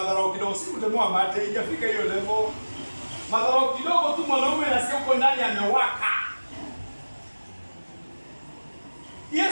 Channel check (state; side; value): inverted; both; correlation -1.00